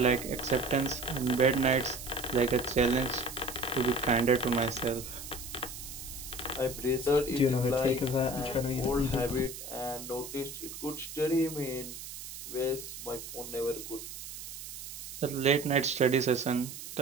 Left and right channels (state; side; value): noise; right; hiss, 10 dB below the sound